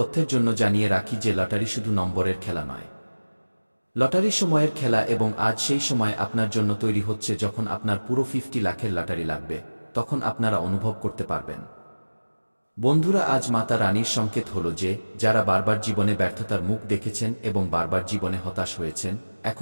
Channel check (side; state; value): both; inverted; correlation -1.00